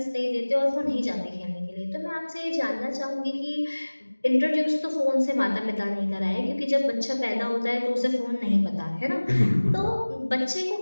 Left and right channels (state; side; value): inverted; both; correlation -1.00